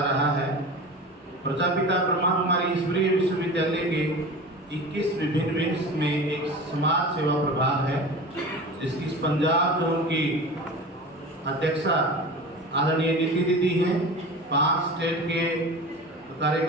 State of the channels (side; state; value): both; normal; correlation 0.33